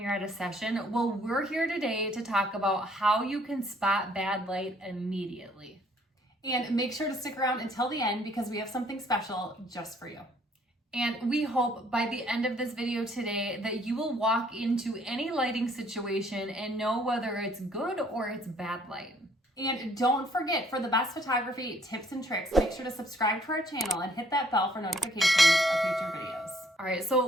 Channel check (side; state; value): both; normal; correlation 0.63